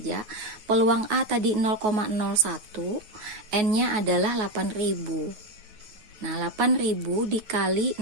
peluang A tadi 0,01, N-nya adalah 8.000. Nah, 8.000 dikali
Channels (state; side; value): late; left; 9.4 ms